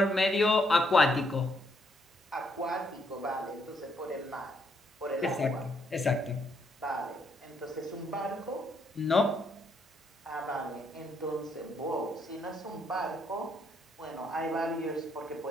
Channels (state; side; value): normal; both; correlation 0.73